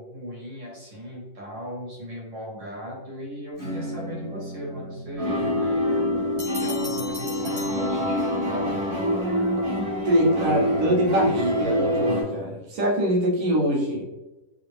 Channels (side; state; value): left; late; 10 ms